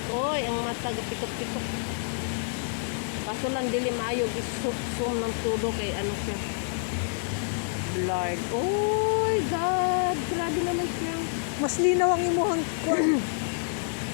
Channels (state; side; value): silent; right; digital silence